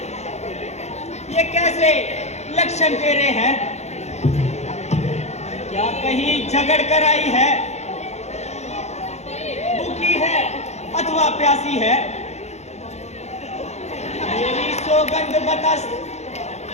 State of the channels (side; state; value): right; late; 0.32 ms